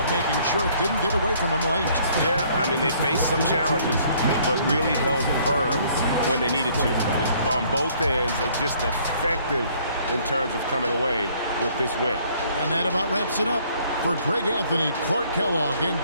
making sure it didn't get away from them late. Yeah, I mean, they faced some challenges, but really held firm when they needed to. On both ends, just effective in terms of coming away with this win. And that about wraps it up. For Greg Anthony, Clark Kellogg, and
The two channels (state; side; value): inverted; both; correlation -0.61